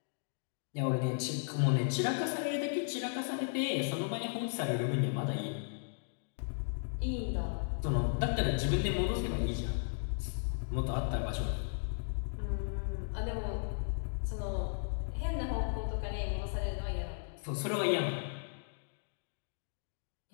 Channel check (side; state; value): right; silent; digital silence